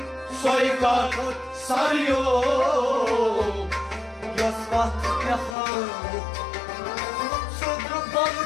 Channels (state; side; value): drops out; right; at 5.6 s